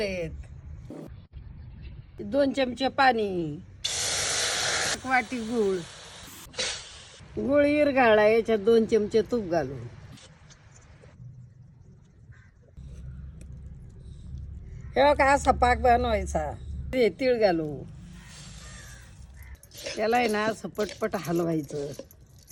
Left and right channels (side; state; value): both; identical; correlation 1.00